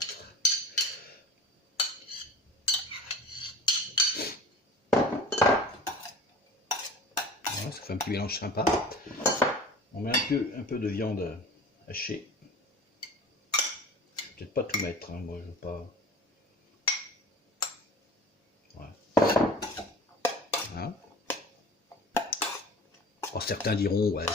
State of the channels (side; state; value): both; normal; correlation 0.39